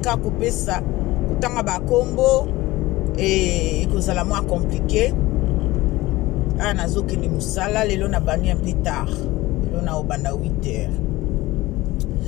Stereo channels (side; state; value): right; quieter; 18.9 dB